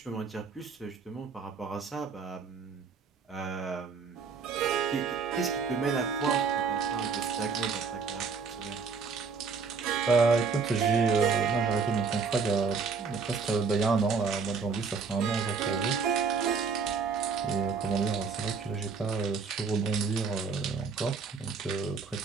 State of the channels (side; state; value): left; quieter; 5.2 dB